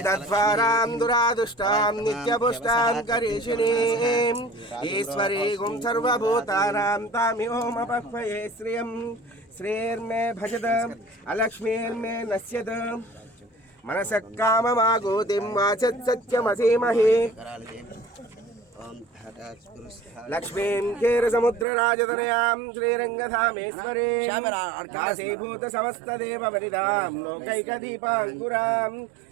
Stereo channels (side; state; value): left; drops out; at 21.7 s